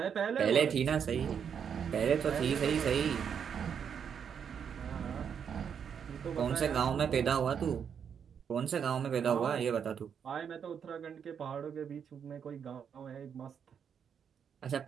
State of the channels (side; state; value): left; quieter; 7.5 dB